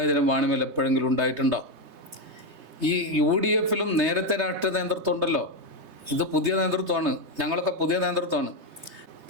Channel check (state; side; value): late; left; 3.2 ms